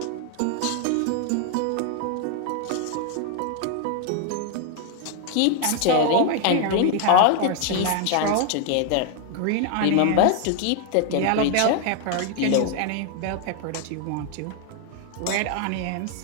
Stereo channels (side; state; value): both; different; correlation 0.00